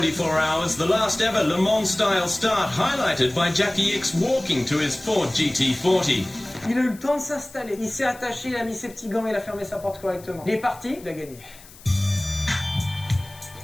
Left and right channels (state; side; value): noise; left; hiss, 21 dB below the sound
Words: hours, the last ever Le Mans style start, highlighted by Jackie X walking to his Ford GT40. Il a eu le temps de s'installer. Il s'est attaché, il a mis ses petits gants, il a fermé sa porte correctement. Il est parti, il a gagné.